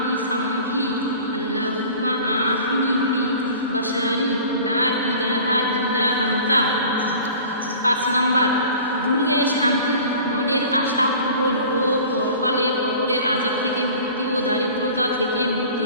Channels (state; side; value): inverted; both; correlation -0.43